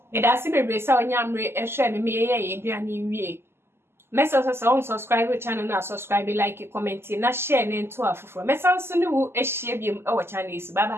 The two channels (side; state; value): left; late; 0.12 ms